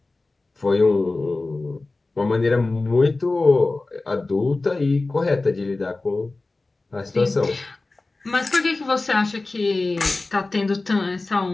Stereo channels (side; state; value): right; quieter; 3.3 dB